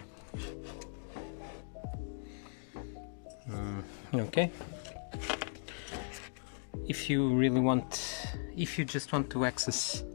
Okay. if you just want to access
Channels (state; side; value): silent; right; digital silence